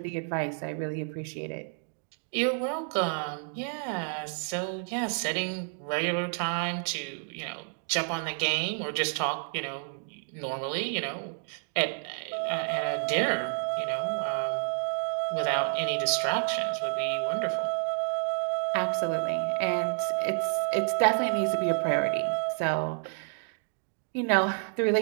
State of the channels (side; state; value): left; silent; 58 dB below the other